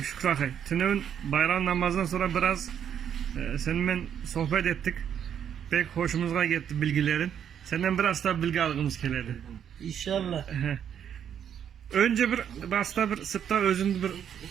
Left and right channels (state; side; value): quieter; left; 8.8 dB